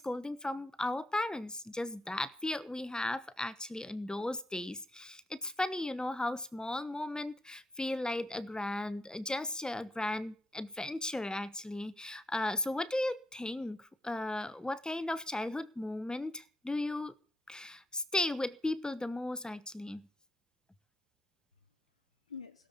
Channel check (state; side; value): normal; both; correlation 0.80